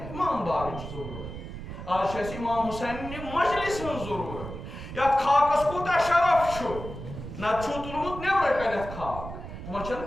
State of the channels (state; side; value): noise; right; rumble, 10 dB below the sound